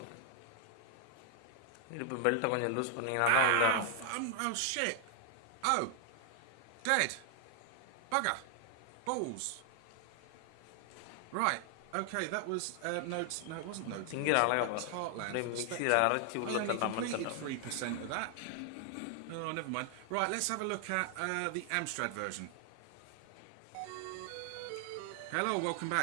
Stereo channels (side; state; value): both; different; correlation 0.00